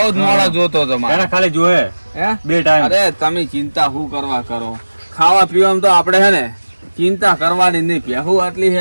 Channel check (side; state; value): both; inverted; correlation -1.00